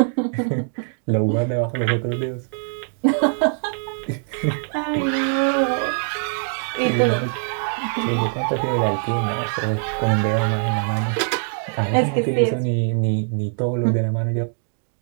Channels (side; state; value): left; silent; digital silence